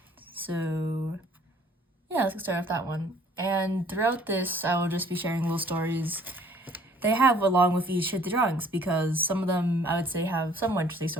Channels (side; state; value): both; normal; correlation 0.57